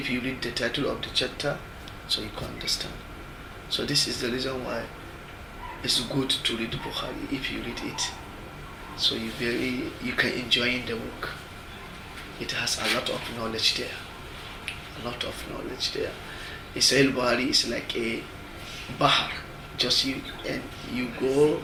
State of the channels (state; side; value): identical; both; correlation 1.00